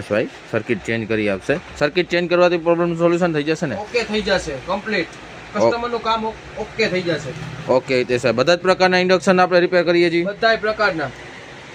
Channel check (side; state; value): both; identical; correlation 1.00